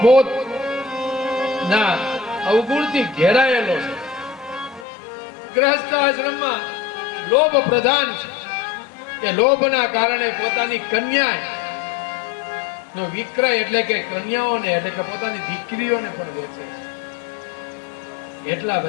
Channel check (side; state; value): right; drops out; at 4.9 s